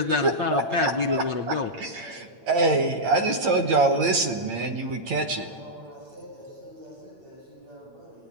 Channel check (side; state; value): left; late; 8.9 ms